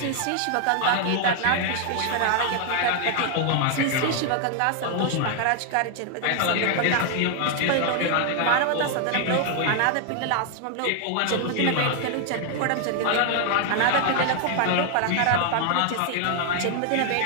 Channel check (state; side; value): different; both; correlation 0.00